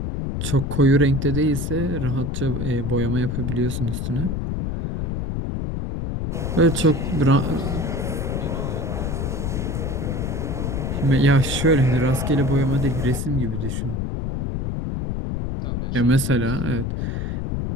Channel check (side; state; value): left; noise; rumble, 2 dB below the sound